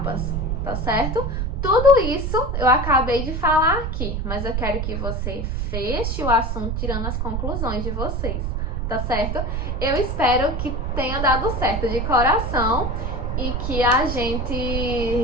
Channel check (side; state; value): right; noise; rumble, 1 dB below the sound